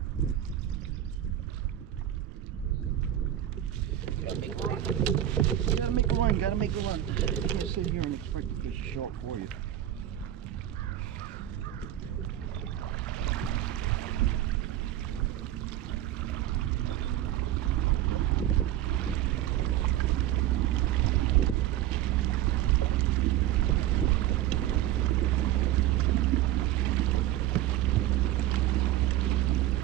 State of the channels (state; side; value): quieter; left; 12.9 dB